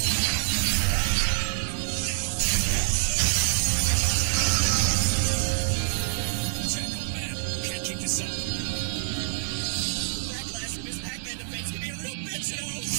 Now! Check, old man. You can't keep this up. The backlash from his Pac-Man defense can be a real bitch, you know!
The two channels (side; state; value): left; silent; 60 dB below the other